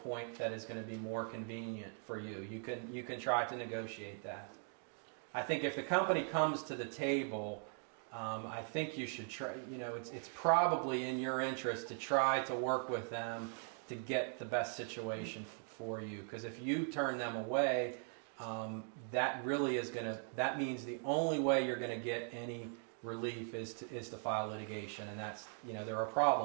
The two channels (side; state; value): left; silent; 51 dB below the other